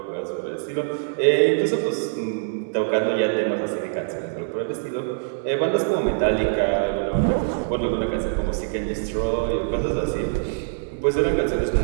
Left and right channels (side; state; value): left; silent; digital silence